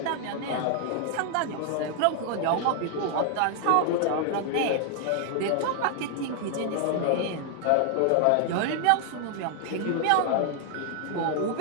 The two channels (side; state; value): both; different; correlation 0.00